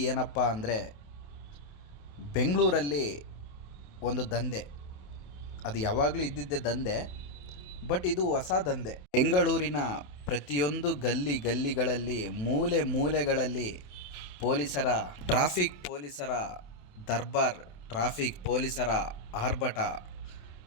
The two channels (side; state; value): right; late; 27 ms